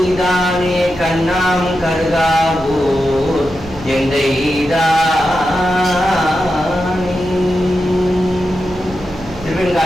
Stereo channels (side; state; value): right; noise; hum, 17 dB below the sound